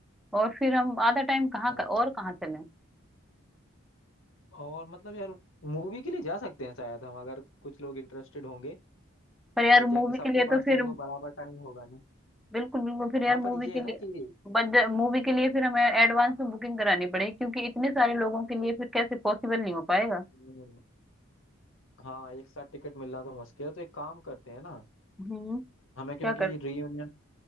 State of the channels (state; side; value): normal; both; correlation 0.76